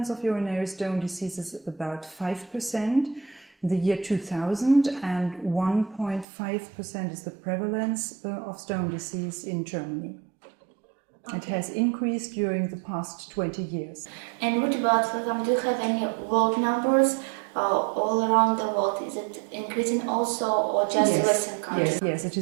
of urinary stone disease is about 5% in the year 2000, and 1.5% is the prevalence of stone disease in Germany. Okay. It has increased during the past 20 years. And what about, for example, do you have any world numbers? All around the world, is it increasing also, or just Western countries? Yes, it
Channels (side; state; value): left; drops out; at 6.2 s